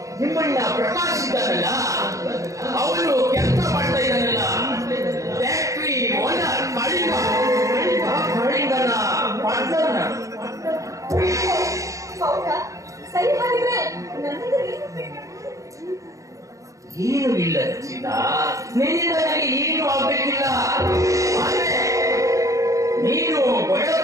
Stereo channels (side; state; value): left; late; 0.16 ms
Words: ನಿಮ್ಮಣ್ಣ ಪ್ರಕಾಶ್ ಇದ್ದಾನಲ್ಲ, ಅವನು ಕೆಲಸ ಮಾಡ್ತಾ ಇದ್ದಾನಲ್ಲ, ಫ್ಯಾಕ್ಟ್ರಿ ಓನರ್ ಕಳಿಂಗನ ಪಾರ್ಟ್ನರ್. ಏನು ಇಲ್ಲ ರಚಿತಾ, ನಿನ್ನಿಂದ ನನಗೆ ಏನು ಆಗ್ಬೇಕಿಲ್ಲ. ಆದ್ರೆ ನೀನು